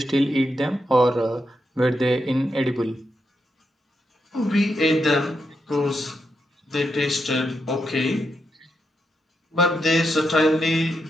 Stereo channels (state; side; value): normal; both; correlation 0.83